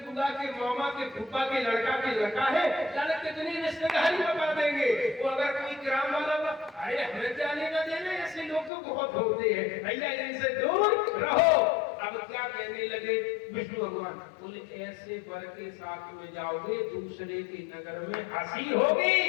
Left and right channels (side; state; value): right; drops out; at 8.7 s